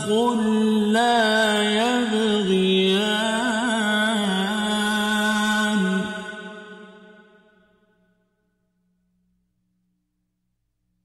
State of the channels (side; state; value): both; identical; correlation 1.00